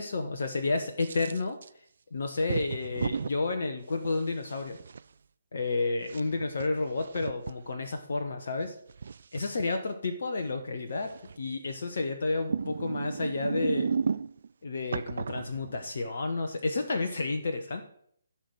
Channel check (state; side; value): inverted; both; correlation -0.85